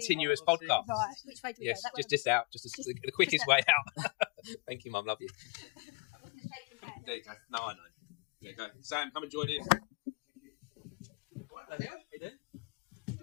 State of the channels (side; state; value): right; quieter; 28.8 dB